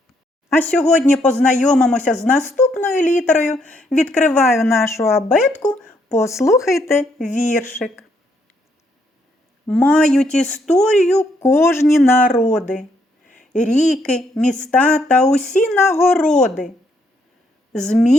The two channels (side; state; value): both; normal; correlation 0.73